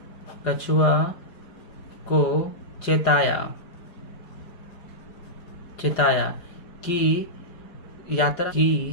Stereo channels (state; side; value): late; right; 4.9 ms